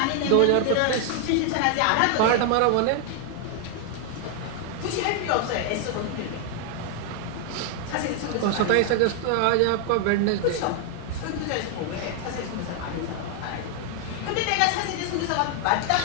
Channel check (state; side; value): different; both; correlation 0.00